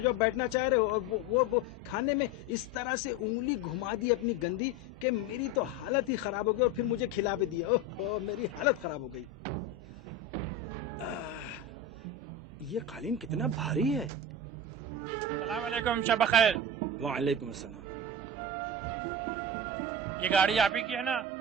अब बैठना चाह रहे हो, और वो खाने में इस तरह से उंगली घुमा दी अपनी गंदी कि मेरी तो हालत ही खराब हो गई, और फिर मुझे खिला भी दिया। ओह मेरी हालत खराब हो गई। ये कालीन कितना भारी है। अस्सलाम वालेकुम, शब खैर। वालेकुम अस्सलाम। ये गाड़ी आप ही की है ना?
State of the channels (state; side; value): normal; both; correlation 0.24